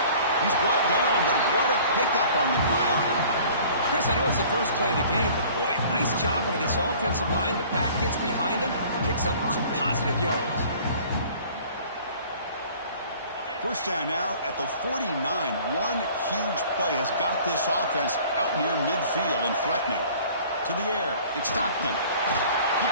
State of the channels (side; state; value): both; inverted; correlation -0.49